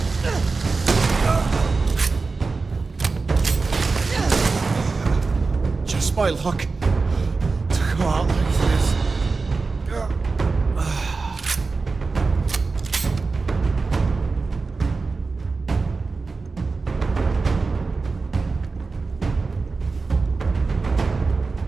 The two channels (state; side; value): quieter; left; 4.1 dB